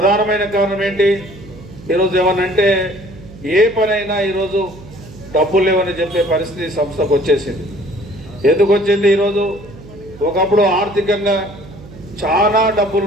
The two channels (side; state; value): right; noise; hum, 18 dB below the sound